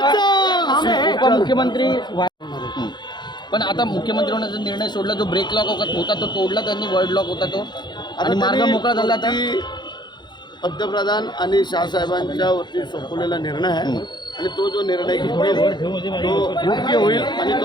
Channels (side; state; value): right; late; 0.21 ms